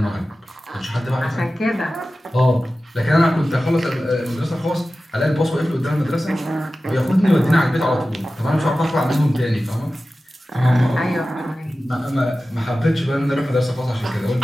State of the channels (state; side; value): normal; both; correlation 0.95